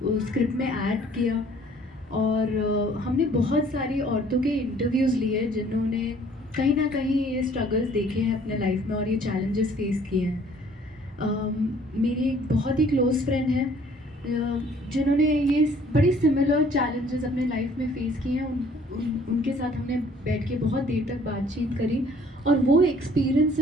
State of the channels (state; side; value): normal; both; correlation 0.57